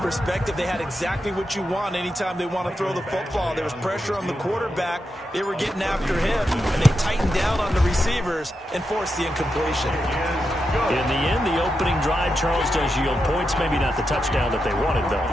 they had exactly what you want anytime they want to throw the football. There was pressure on the quarterback. They were getting after him, and they tightened down on the receivers and forced the incompletion. In the end, the opening drive, Charles, does yield points. Maybe not the touchdown that they wanted, though.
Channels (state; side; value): normal; both; correlation 0.87